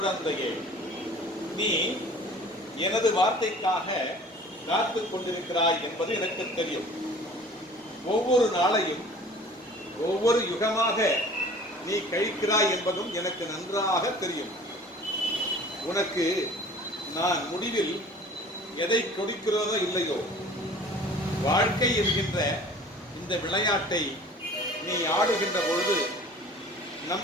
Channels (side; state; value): both; normal; correlation 0.47